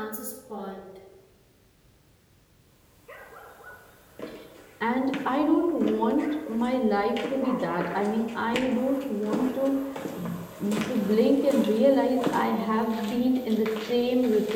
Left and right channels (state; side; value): identical; both; correlation 1.00